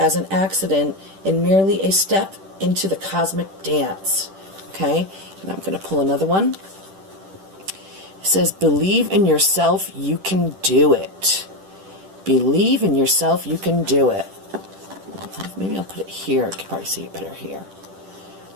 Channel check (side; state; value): left; late; 10 ms